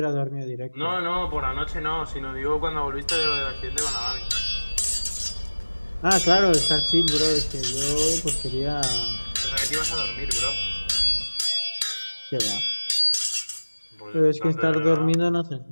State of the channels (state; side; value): inverted; both; correlation -1.00